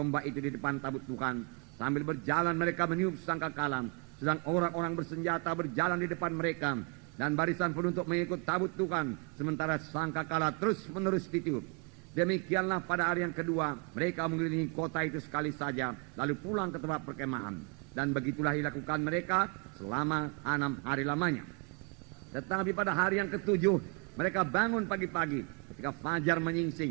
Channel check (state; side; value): quieter; left; 33.8 dB